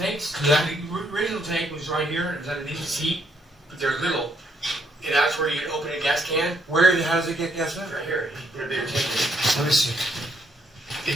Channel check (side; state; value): both; normal; correlation 0.72